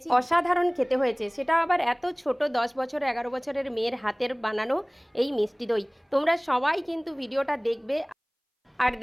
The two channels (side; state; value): both; identical; correlation 1.00